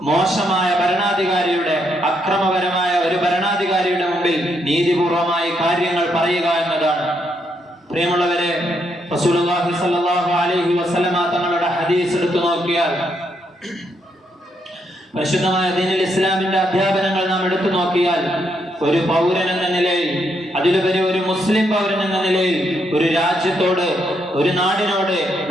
മോശമായ ഭരണാധികാരിയുടെ, അക്രമപരമായ ഒരു ഭരണാധികാരിയുടെ മുമ്പിൽ നീതിപൂർവമായി കാര്യങ്ങൾ പറയുക എന്നതാണ്. പ്രിയമുള്ളവരെ, റസൂലുള്ളാഹി സ്വല്ലല്ലാഹു അലൈഹി വസല്ലമ തങ്ങളുടെ ഹദീസ് എടുത്തു നോക്കിയാൽ, പരിശുദ്ധമായ ദീനുൽ ഇസ്ലാമിന്റെ അധ്യാപനങ്ങൾ നാം എടുത്തു നോക്കിയാൽ, ഒരു പൗരൻ എന്ന നിലയിൽ, അതിലുപരി ഒരു മുസ്ലിം പൗരൻ എന്ന നിലയിൽ ഒരു രാജ്യത്തോട്, ഒരു നാടിനോട്,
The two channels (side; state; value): both; normal; correlation 0.77